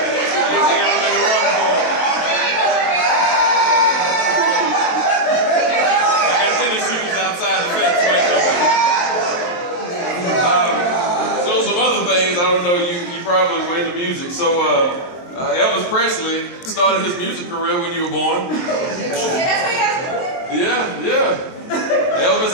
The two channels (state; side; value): late; right; 23 ms